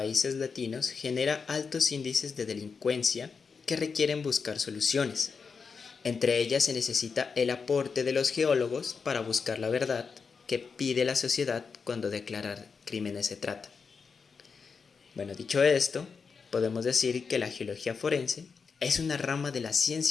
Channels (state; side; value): quieter; right; 5.4 dB